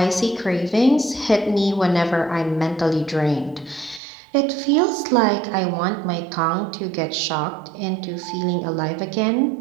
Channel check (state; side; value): drops out; left; at 4.0 s